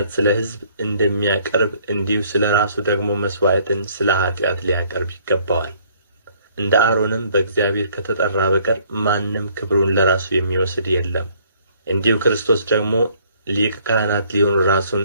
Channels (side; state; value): both; inverted; correlation -0.62